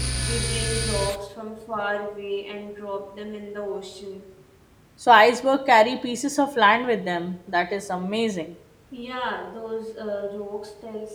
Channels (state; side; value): identical; both; correlation 1.00